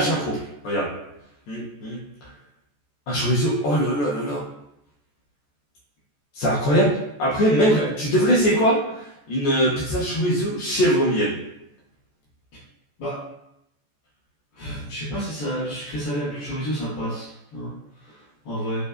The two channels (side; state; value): right; late; 14 ms